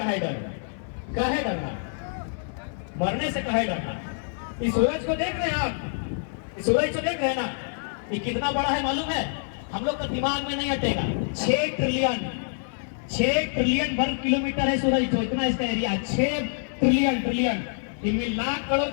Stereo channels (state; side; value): silent; right; 61 dB below the other